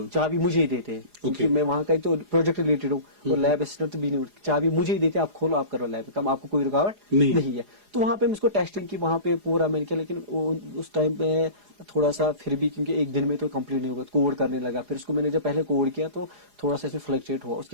चाबी मुझे ही देते हैं, क्योंकि मैं वहाँ का तो प्रोजेक्ट रिलेटेड हूँ और लैब असिस्टेंट तो भी नहीं, चाबी मुझे ही देते, आप खोलो, आप करो लैब में काम, आपको कोई रुकावट नहीं है. तो वहाँ पे मुझको टेस्टिंग की, वहाँ पे पूरा मैंने किया. लेकिन उस टाइम पे थोड़ा सा फिर भी, क्योंकि एक दिन में तो कंप्लीट नहीं होगा, कोड करने लगा. फिर उसको मैंने जब पहले कोड किया तो थोड़ा सा इसमें फ्लक्चुएट हुआ.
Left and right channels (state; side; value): late; left; 4.8 ms